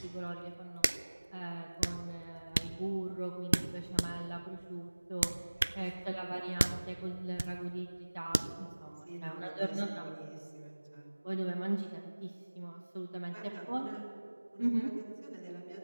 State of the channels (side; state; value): both; inverted; correlation -1.00